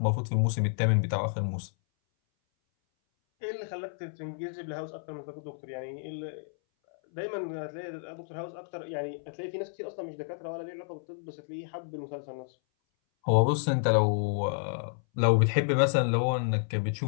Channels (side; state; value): right; silent; 58 dB below the other